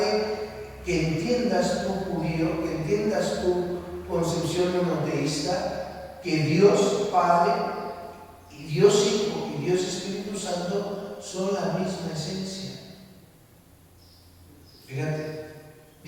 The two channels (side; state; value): both; identical; correlation 1.00